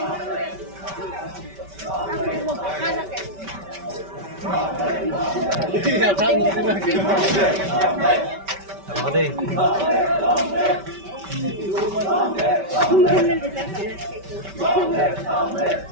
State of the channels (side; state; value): left; late; 5.2 ms